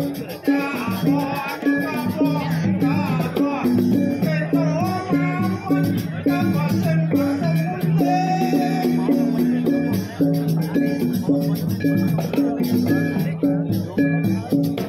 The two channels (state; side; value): identical; both; correlation 1.00